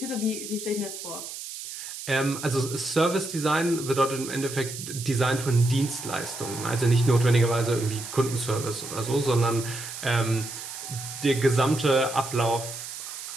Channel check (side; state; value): right; noise; hiss, 9 dB below the sound